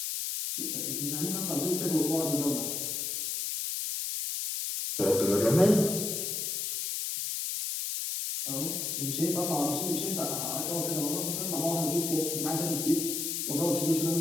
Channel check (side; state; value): left; noise; hiss, 2 dB below the sound